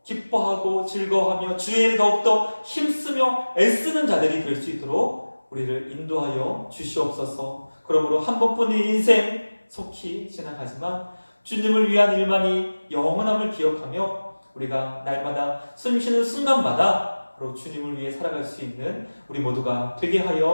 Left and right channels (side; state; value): both; inverted; correlation -1.00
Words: 기뻐하고 즐거워하며 주의 일을 더욱더 힘쓰며 애쓰는 자들이 될 수 있도록 우리를 인도하여 주시옵소서. 그러므로 한 번뿐인 인생 속히 지나가지만 주님을 위한 일만이 영원함을 기억하며 우리가 날마다 숨쉬는 순간마다 바로 주님을 위해 살아갈 수 있는 우리 모두가 되게